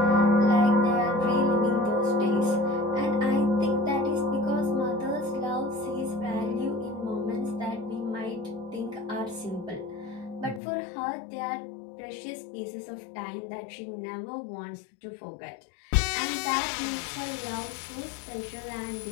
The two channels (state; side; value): drops out; right; at 10.6 s